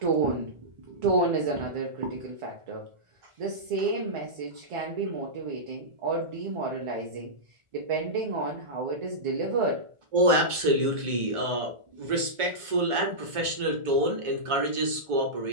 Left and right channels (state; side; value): late; left; 1.4 ms